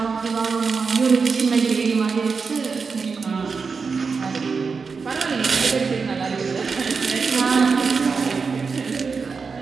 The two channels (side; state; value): left; quieter; 5.0 dB